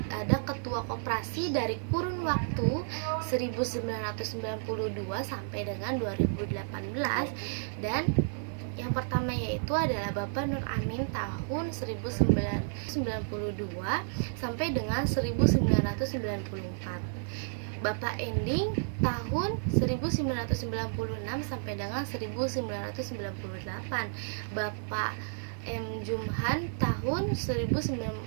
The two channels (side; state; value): left; silent; digital silence